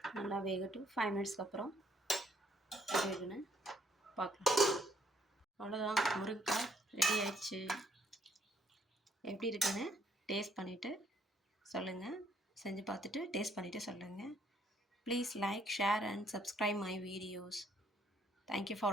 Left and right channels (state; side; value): normal; both; correlation 0.67